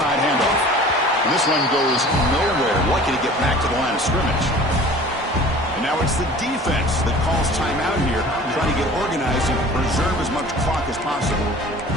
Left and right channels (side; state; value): both; normal; correlation 0.44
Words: handoff. And this one goes nowhere. Lucky to get back to the line of scrimmage. And now it's the defense that calls timeout here, trying to get organized and preserve as much clock as possible.